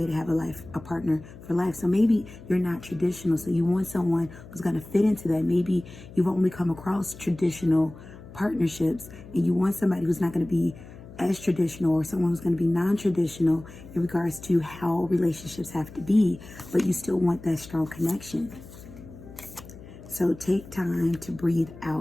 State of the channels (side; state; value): left; noise; hum, 17 dB below the sound